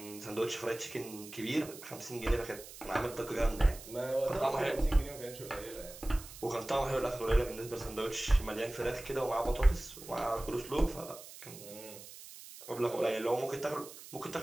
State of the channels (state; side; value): noise; right; hiss, 15 dB below the sound